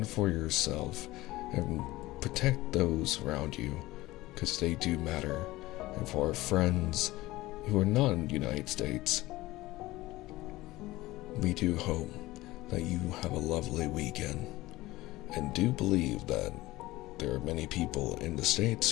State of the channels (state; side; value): quieter; right; 18.3 dB